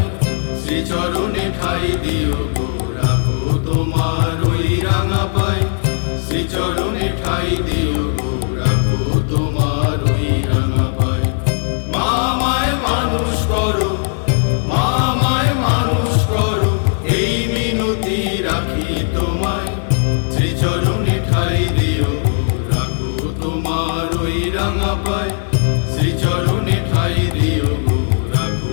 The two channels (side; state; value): right; silent; digital silence